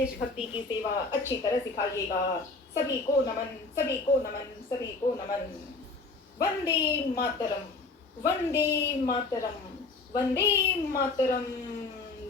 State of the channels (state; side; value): quieter; right; 3.6 dB